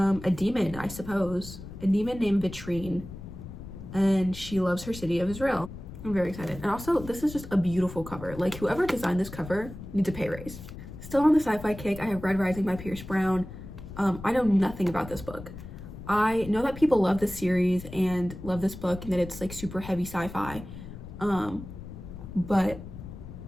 demon, I suppose. A demon named Vitrine, and she loves her city of Israel. I'm very excited. And also, this is just a beautiful cover. Like, whoever designed this cover needs a pay raise. Still on the sci-fi kick, I have Red Rising by Pierce Brown. I know nothing about this book. I know that people love this series and love this book and that it's like super heavy sci-fi. But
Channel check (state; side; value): noise; left; rumble, 12 dB below the sound